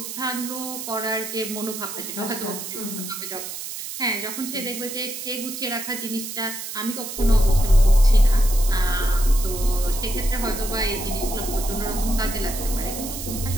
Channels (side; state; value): right; noise; hiss, 8 dB below the sound